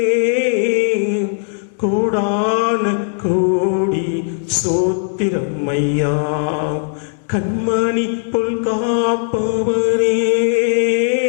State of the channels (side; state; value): right; silent; digital silence